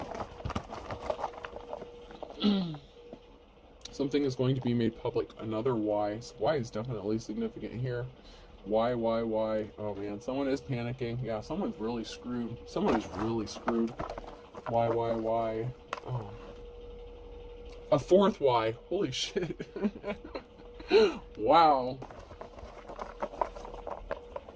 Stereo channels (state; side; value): identical; both; correlation 1.00